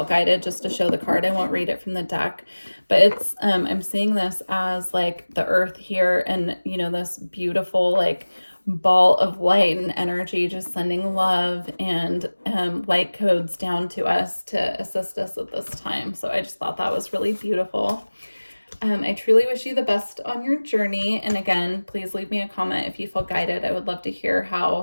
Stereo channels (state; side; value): inverted; both; correlation -1.00